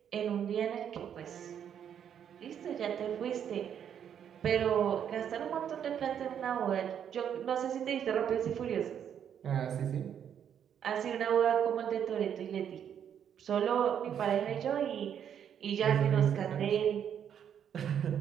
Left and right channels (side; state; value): left; quieter; 8.8 dB